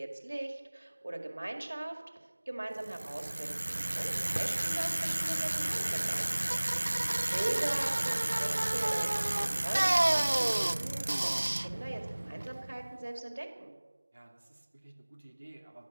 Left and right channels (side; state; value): both; inverted; correlation -1.00